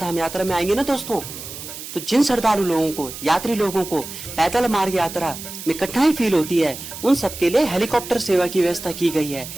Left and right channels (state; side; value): noise; right; hiss, 11 dB below the sound